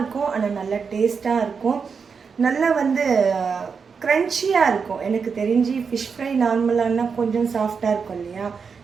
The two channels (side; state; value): left; quieter; 5.7 dB